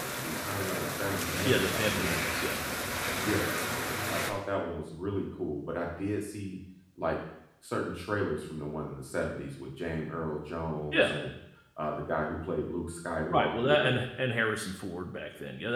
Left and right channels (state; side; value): identical; both; correlation 1.00